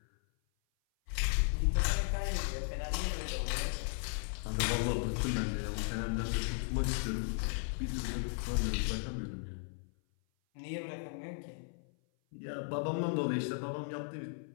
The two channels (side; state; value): right; silent; 54 dB below the other